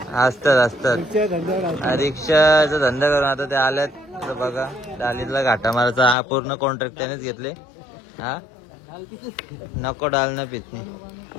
असतात रिक्षाचा धंदा करून आता ते आल्यात। तर बघा, डालीला घाटा मारायचा हा पूर्ण कॉन्ट्रॅक्ट त्यानेच घेतले। हा नको डाल ना पितनी।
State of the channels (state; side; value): drops out; right; at 6.2 s